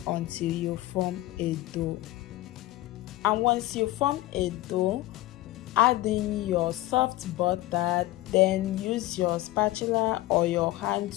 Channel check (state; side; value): quieter; right; 17.1 dB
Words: until you form a dough. And once you form a dough, add in your soft butter. Then use your spatula or your hand